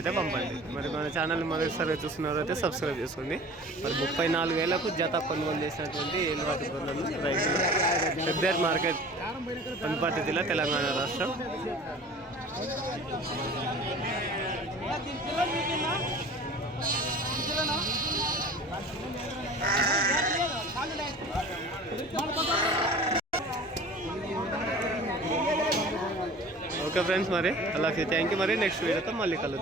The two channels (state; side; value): normal; both; correlation 0.42